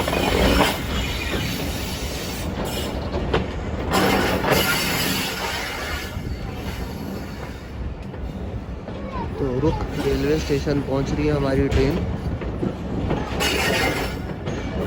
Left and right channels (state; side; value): identical; both; correlation 1.00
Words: तो रुक रेलवे स्टेशन पहुंच रही है हमारी ट्रेन।